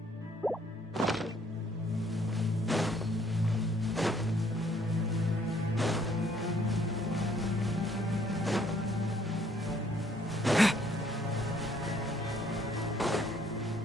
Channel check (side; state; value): both; normal; correlation 0.64